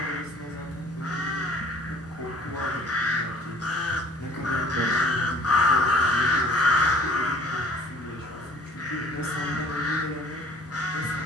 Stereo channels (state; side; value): normal; both; correlation 0.51